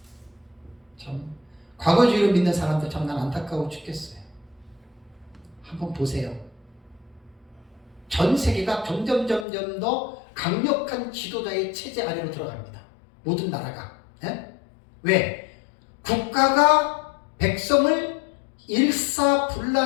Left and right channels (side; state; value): right; drops out; at 9.5 s